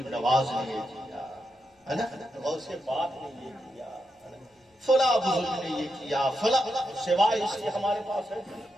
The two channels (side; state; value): both; normal; correlation 0.85